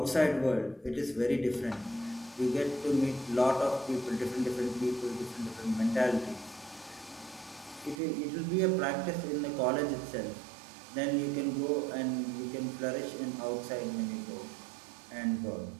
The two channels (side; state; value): left; drops out; at 8.0 s